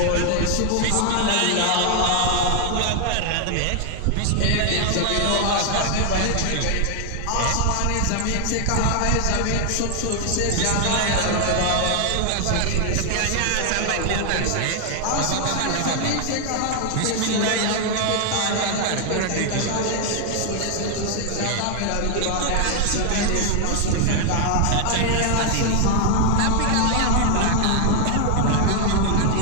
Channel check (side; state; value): both; different; correlation 0.00